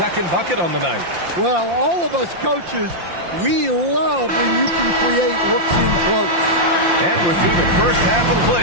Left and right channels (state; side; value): late; left; 5.8 ms